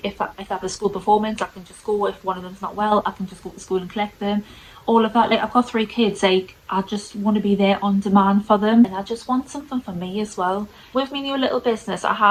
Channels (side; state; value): both; identical; correlation 1.00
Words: if I have a school performance, I can just go. If one of them's not well, I can just go to school and collect them. All of that. Like, I've got 3 kids, like, I just want to be there on demand for them, and I just want something for me as well. With my new little business, I